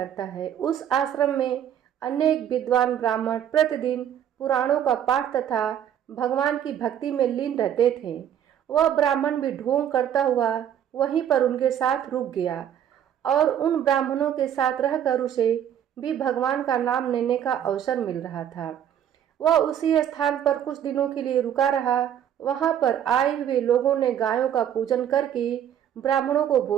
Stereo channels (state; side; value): quieter; left; 9.8 dB